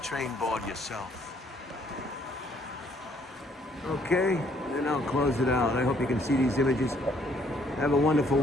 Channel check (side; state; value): both; normal; correlation 0.65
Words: train board yourself. Okay, then I'll close it out. I hope you can see these images. Have a wonderful